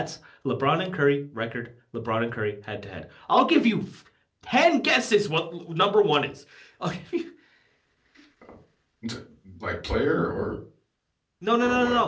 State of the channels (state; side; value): identical; both; correlation 1.00